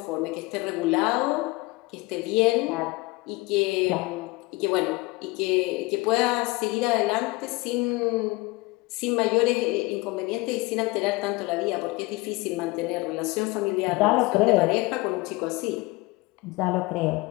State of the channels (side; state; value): right; quieter; 23.0 dB